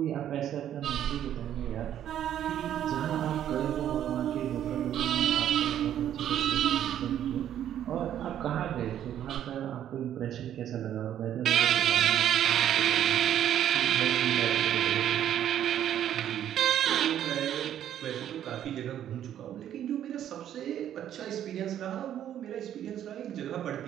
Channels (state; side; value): quieter; left; 10.7 dB